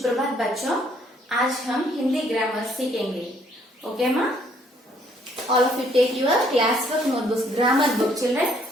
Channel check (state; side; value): normal; both; correlation 0.65